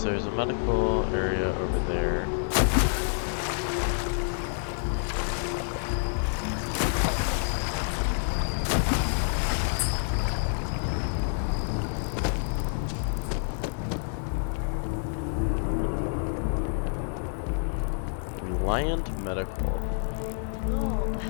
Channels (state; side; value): silent; right; digital silence